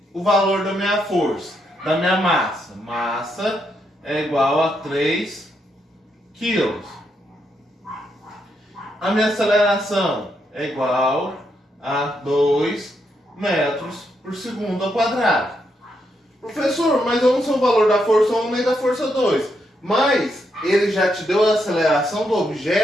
o valor da minha força, da minha massa. Massa é igual a 3 quilos. A minha aceleração é igual a 2 metros por segundo ao quadrado. Professor, mas eu não sei o valor da força 1 nem da força 2. Mas ele já te deu a aceleração do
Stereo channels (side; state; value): both; normal; correlation 0.79